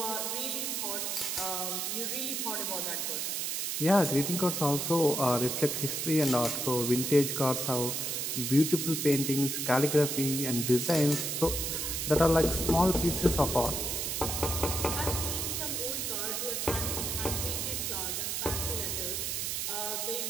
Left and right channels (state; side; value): noise; right; hiss, 1 dB below the sound